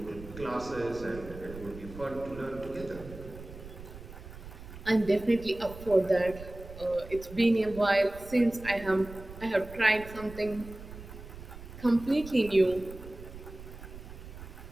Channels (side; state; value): right; noise; rumble, 14 dB below the sound